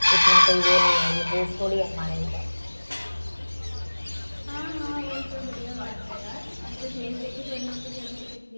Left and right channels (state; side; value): inverted; both; correlation -1.00